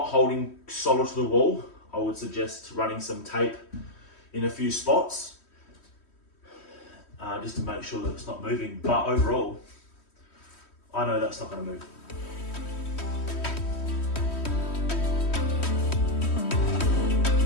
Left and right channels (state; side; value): late; right; 3.1 ms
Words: holding solid to the wall, I would suggest running some tape in a few spots just to make sure that it's not moving, but overall I know that's not going to move.